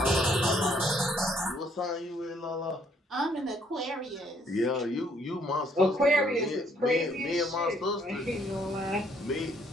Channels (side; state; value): both; normal; correlation 0.66